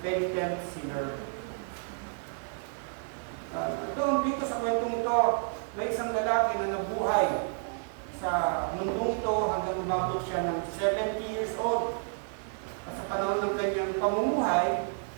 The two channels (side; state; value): left; silent; 58 dB below the other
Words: Sinner. Doon dito sa kwentong ito, may isang lalaki na nabuhay sa mundong ito hanggang umabot siya ng 70 years old. At sa panahon ng kanyang pamumuhay,